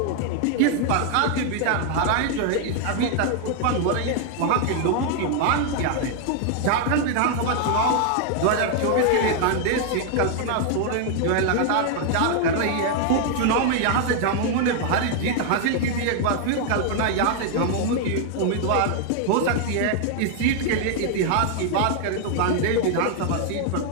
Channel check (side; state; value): both; different; correlation 0.00